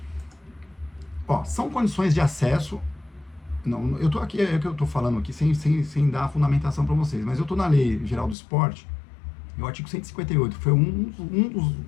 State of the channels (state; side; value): drops out; right; at 8.3 s